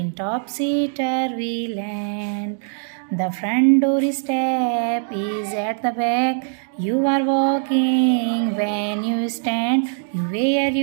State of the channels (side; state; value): left; silent; digital silence